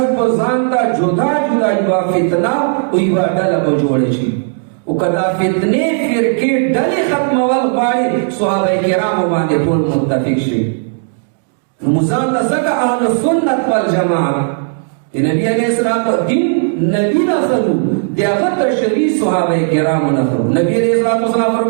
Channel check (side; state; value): left; silent; digital silence